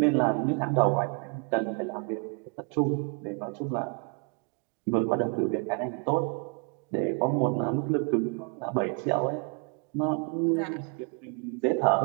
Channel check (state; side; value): quieter; left; 34.3 dB